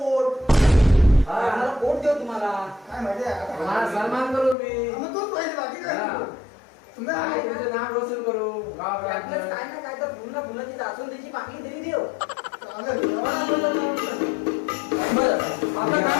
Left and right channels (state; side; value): drops out; right; at 4.5 s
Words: आम्हाला पोट देऊ तुम्हाला काय माहिती आहे आता तुम्हाला सन्मान करू मी मग तोच पाहिजे बाकी काय हा. तुम्ही काय तुमचं नाव रोशन करू आपल्याच गावात काय ना काय तर पुन्हा पुन्हा ती दासून त्याची बाकी तरी देव बरं आपलं